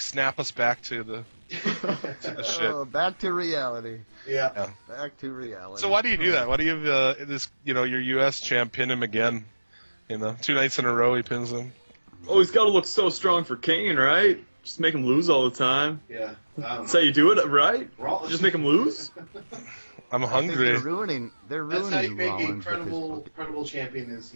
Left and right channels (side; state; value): both; inverted; correlation -1.00